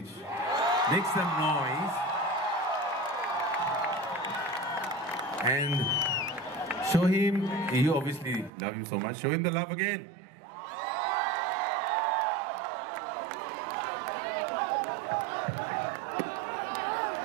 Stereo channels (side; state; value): left; drops out; at 8.5 s